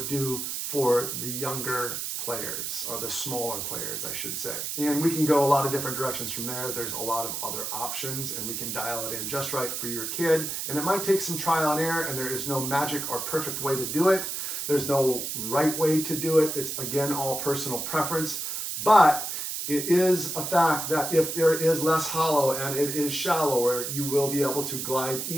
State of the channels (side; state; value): right; noise; hiss, 4 dB below the sound